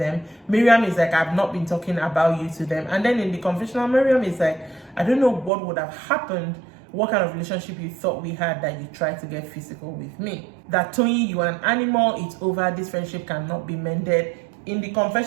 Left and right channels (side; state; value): left; drops out; at 5.5 s